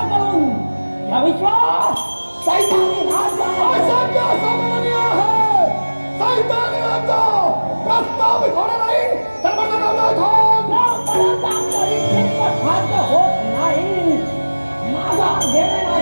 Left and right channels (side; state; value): both; inverted; correlation -1.00